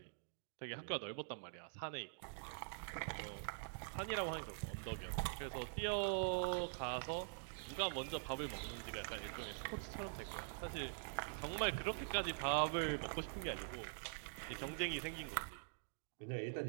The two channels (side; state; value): left; silent; digital silence